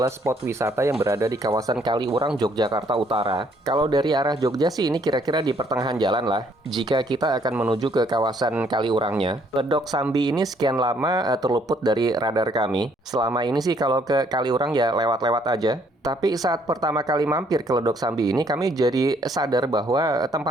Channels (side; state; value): both; normal; correlation 0.66